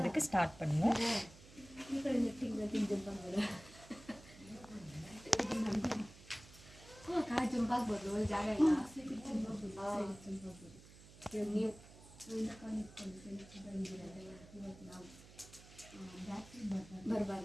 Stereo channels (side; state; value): right; noise; hum, 20 dB below the sound